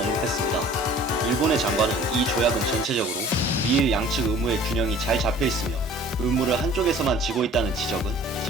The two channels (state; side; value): normal; both; correlation 0.49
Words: 일본의 장관은 이 조약은 전체적으로 미일 양측 의무의 균형이 잘 잡혀있으며 의무를 한쪽에서만 지고 있다는 지적은